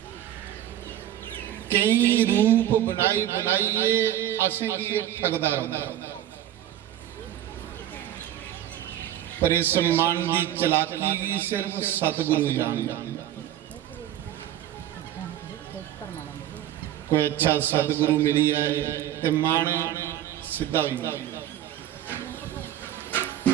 कई रूप बनाई बनाइए असें की ठगदा रहता। पर इस मन की चलाकी भी सिर्फ सतगुरु जानता। कोई अच्छा सतगुरु मिली है तो मन सीधा हुई,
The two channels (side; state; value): left; quieter; 12.1 dB